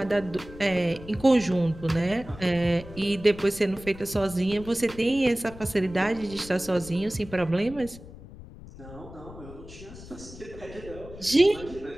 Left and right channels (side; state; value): left; noise; rumble, 16 dB below the sound